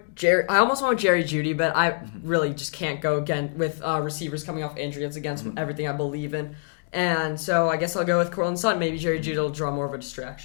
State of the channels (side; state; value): right; silent; digital silence